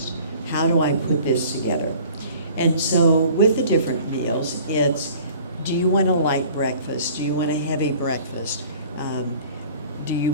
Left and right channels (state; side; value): inverted; both; correlation -0.49